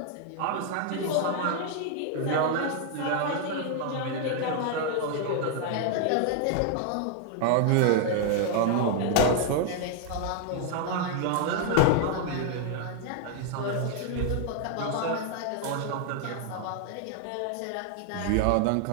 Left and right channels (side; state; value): both; different; correlation 0.00